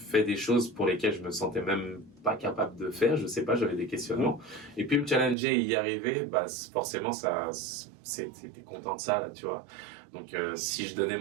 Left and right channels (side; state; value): left; drops out; at 5.4 s